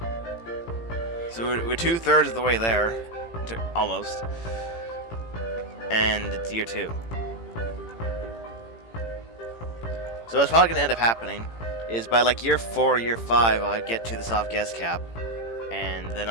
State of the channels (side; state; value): right; late; 18 ms